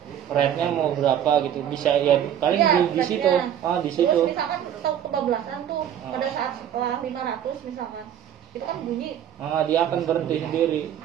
rate-nya mau berapa gitu, bisa ya paling di situ. Di situ. Terus misalkan tahu kebablasan tuh pada saat setelah 500 misalkan, itu kan bunyi. Dia akan berhenti sendiri.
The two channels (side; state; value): left; quieter; 10.0 dB